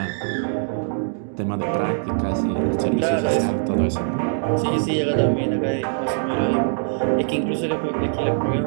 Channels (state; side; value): silent; left; digital silence